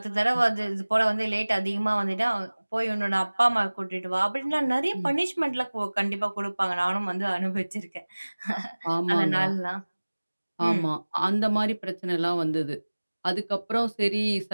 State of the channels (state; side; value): inverted; both; correlation -1.00